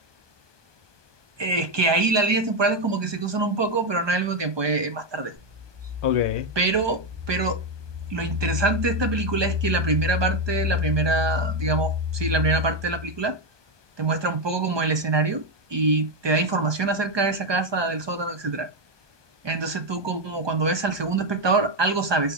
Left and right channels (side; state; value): left; late; 1.2 ms